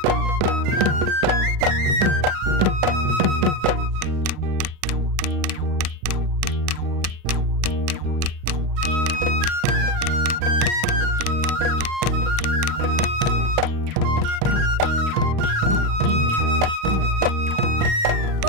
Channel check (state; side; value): late; left; 37 ms